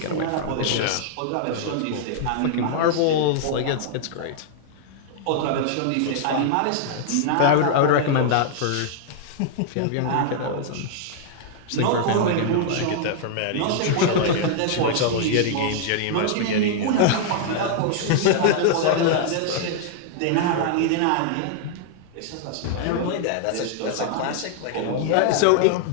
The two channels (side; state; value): both; different; correlation -0.01